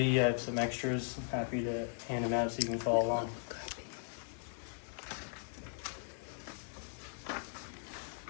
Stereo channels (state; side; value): silent; right; 52 dB below the other